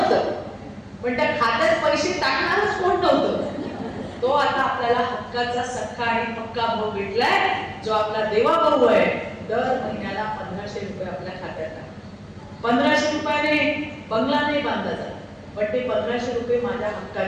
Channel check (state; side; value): identical; both; correlation 1.00